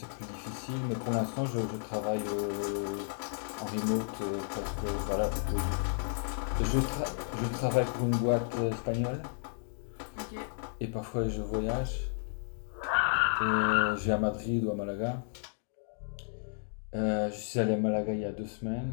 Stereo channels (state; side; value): silent; right; digital silence